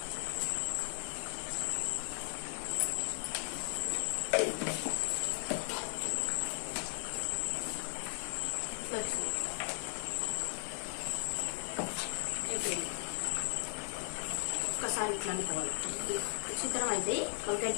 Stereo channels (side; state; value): right; silent; 53 dB below the other